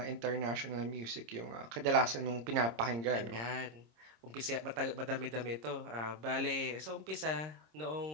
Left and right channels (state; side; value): late; left; 26 ms